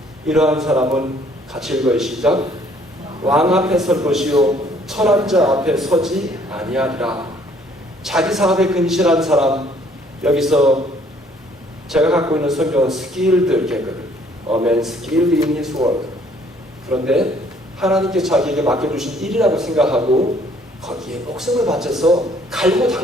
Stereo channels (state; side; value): normal; both; correlation 0.61